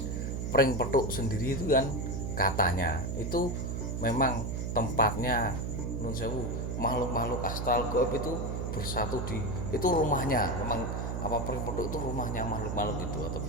pring petuk sendiri itu kan katanya itu memang tempatnya nun sewu makhluk-makhluk astral gaib itu bersatu di itu rumahnya memang apa pring petuk itu rumahnya makhluk-makhluk itu atau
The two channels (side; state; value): right; noise; hum, 2 dB below the sound